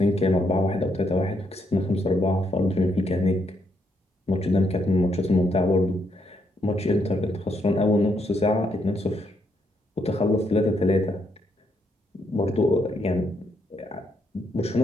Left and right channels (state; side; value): normal; both; correlation 0.76